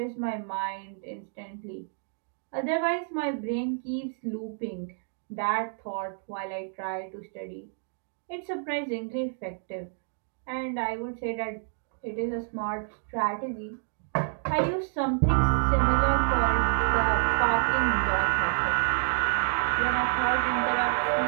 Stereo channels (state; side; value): silent; left; digital silence